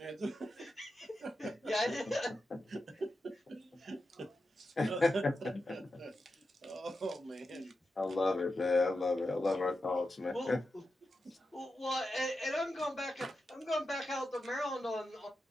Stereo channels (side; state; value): both; normal; correlation 0.89